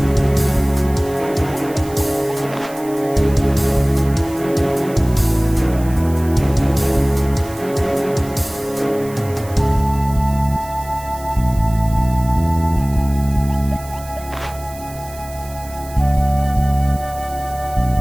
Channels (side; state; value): right; noise; hiss, 18 dB below the sound